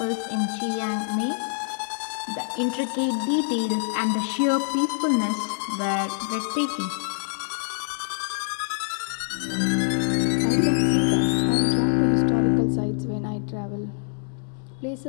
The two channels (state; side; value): silent; right; 61 dB below the other